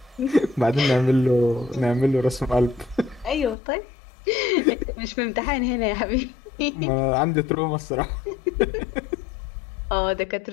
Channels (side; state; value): right; drops out; at 3.6 s